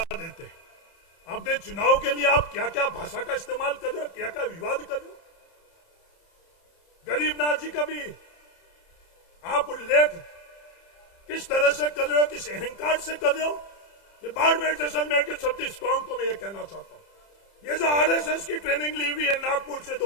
देते हैं। अपने चुनाव के लिए आप क्या क्या भाषा का इस्तेमाल कर रहे हो, क्या क्या विवाद कर रहे हो? गरीबनाथ जी का भी आप उल्लेख किस तरह से कर रहे हो, किस अहंकार से कर रहे हो? ये बाड़मेर जैसलमेर के 36 कौम को मैं ये कहना चाहता हूं, ये जो आरएसएस की ट्रेनिंग ली हुई है नागपुर से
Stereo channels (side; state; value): right; late; 30 ms